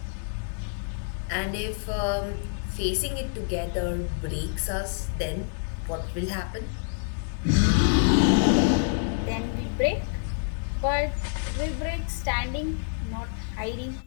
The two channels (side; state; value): right; silent; digital silence